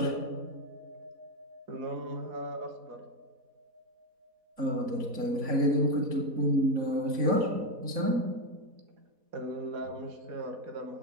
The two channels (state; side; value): late; left; 4.1 ms